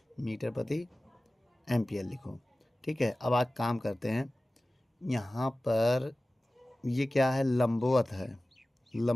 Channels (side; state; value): both; normal; correlation 0.97